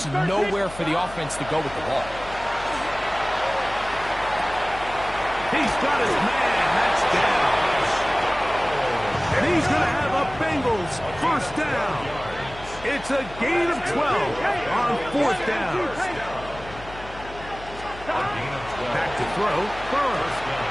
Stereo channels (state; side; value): noise; left; hum, 15 dB below the sound